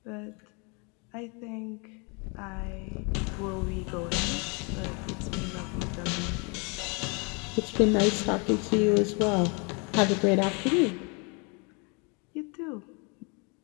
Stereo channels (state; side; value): quieter; right; 32.9 dB